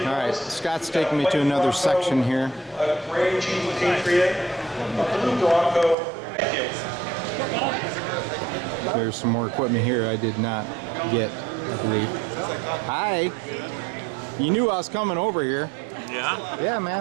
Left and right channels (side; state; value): left; drops out; at 6.0 s